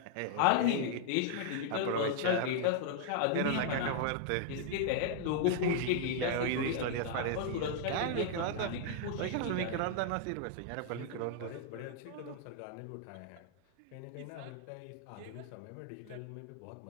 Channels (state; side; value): different; both; correlation -0.01